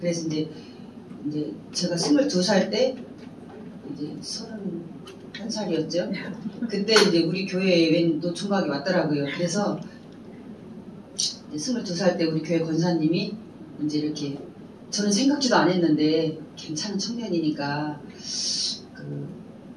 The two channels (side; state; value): both; identical; correlation 1.00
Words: 그래서 이제 제가 22살 때 이제 31살이었죠. 그때 이제 우리 교회에 웬 노총각이 왔더라고요. 그래서 22살 때 우리 교회 권사님이 이제 이렇게 저는 생각지도 안 했는데 괜찮은 청년이니까